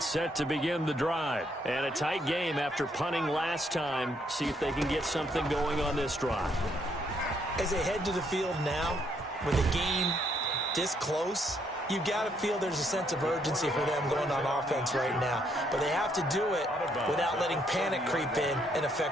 set to begin the drive. And a tight game after punting last time. See if they can get something going on this drive. As they head to the field now, with the game this close, you've got to feel there's a sense of urgency for them going on offense right now. But they have to do it without letting panic creep in and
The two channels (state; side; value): normal; both; correlation 0.72